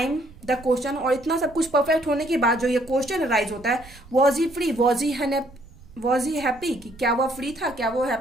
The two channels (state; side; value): noise; right; rumble, 21 dB below the sound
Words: the question, और इतना सब कुछ परफेक्ट होने के बाद जो ये क्वेश्चन राइज होता है, was he free, was he happy, कि क्या वह फ्री था, क्या वो